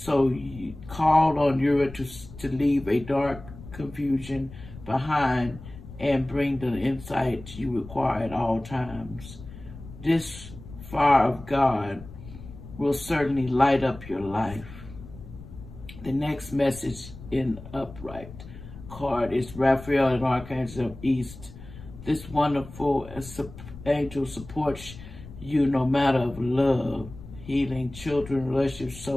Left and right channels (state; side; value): noise; left; rumble, 15 dB below the sound